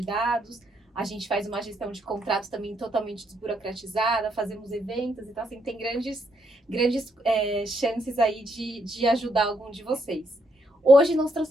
dados. A gente faz uma gestão de contratos também totalmente desburocratizada, fazemos eventos. Então, assim, tem grandes chances aí de ajudar algum de vocês. Hoje nós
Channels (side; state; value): both; normal; correlation 0.75